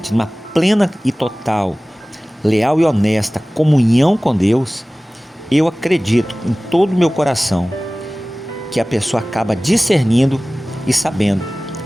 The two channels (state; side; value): normal; both; correlation 0.98